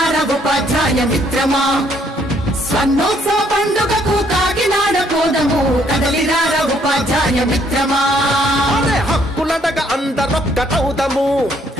ఉపాధ్యాయ మిత్రమా స్వర్ణోత్సవ పండుగకు కాకినాడ పోదము కదలిరార ఉపాధ్యాయ మిత్రమా హక్కులడగ అందరొక్కటవుదము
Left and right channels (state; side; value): normal; both; correlation 0.67